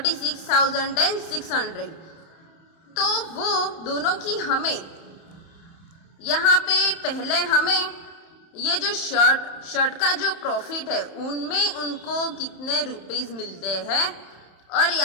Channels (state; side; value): late; right; 31 ms